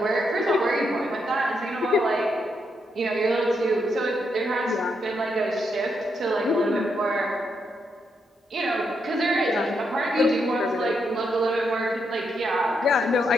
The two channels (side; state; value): both; normal; correlation 0.80